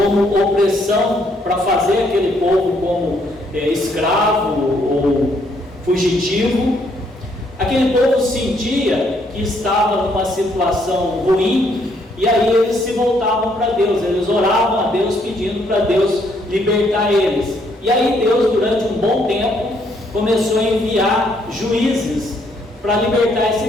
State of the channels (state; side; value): normal; both; correlation 0.70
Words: opressão para fazer aquele povo como escravo ou fugitivo. Aquele povo sentia que estava numa situação ruim, e aí eles se voltavam para Deus, eles oravam a Deus pedindo para Deus libertar eles. E aí Deus, durante um bom tempo, começou a enviar juízes para libertar